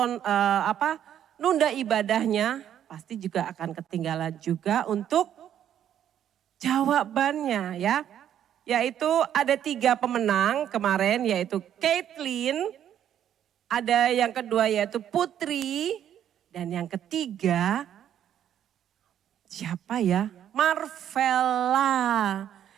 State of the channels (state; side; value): quieter; left; 10.2 dB